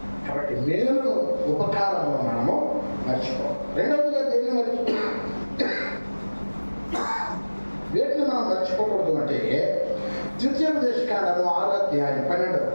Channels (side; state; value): both; inverted; correlation -1.00